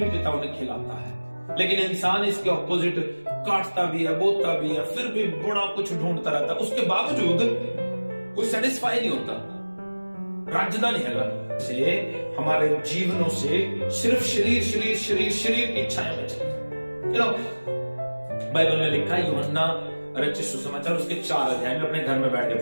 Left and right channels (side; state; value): both; inverted; correlation -1.00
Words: पिता उन्हें खिलाता है। लेकिन इंसान इसके ऑपोजिट काटता भी है, बोता भी है, फिर भी बड़ा कुछ ढूंढता रहता है, उसके बावजूद कोई सेटिस्फाई नहीं होता, राजधानी है से हमारे जीवनों से सिर्फ शरीर शरीर शरीर शरीर की इच्छाएं बचेंगी। बाइबल में लिखा है, यूहन्ना रचित सुसमाचार उसके 4 अध्याय में अपने घर में बैठ के